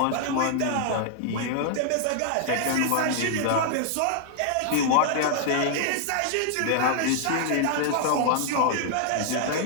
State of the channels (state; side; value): different; both; correlation -0.01